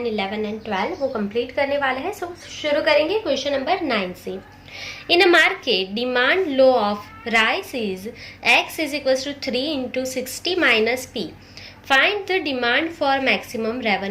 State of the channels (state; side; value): identical; both; correlation 1.00